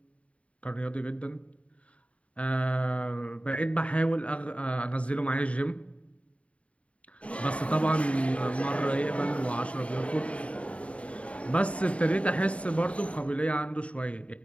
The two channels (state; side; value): late; right; 0.064 ms